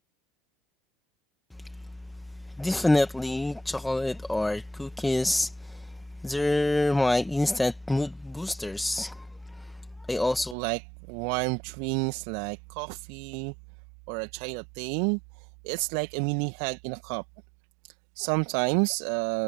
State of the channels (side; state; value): left; drops out; at 10.6 s